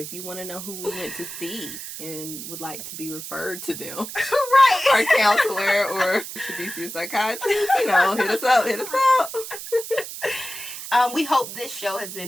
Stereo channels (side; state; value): right; noise; hiss, 9 dB below the sound